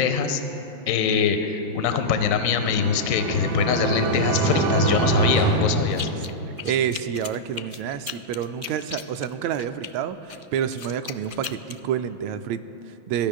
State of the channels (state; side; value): late; left; 5.7 ms